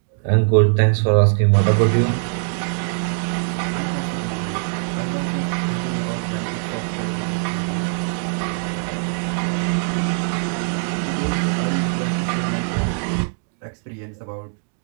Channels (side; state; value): left; silent; digital silence